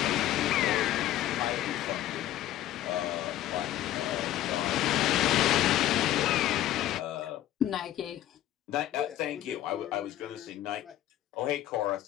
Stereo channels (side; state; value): right; quieter; 13.4 dB